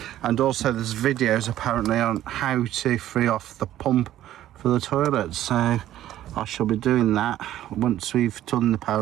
And also there's videos apparently on how to free off the pump for the toilet. So I shall be doing that. Once we've done the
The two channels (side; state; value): left; quieter; 13.0 dB